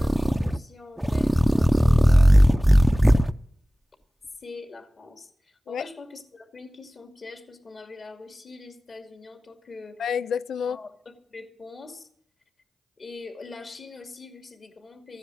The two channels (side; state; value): both; normal; correlation 0.98